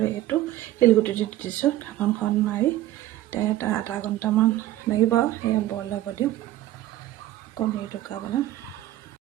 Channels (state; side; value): quieter; left; 14.6 dB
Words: এইটো শিলগুটি দি দিছোঁ। ঢাকনখন মাৰি এটা আধা ঘণ্টামান লাগিব। এয়া বইল হ'ব দিওঁ। কণী টুকা বনাম।